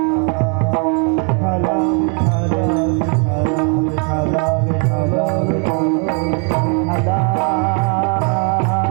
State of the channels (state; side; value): quieter; left; 38.6 dB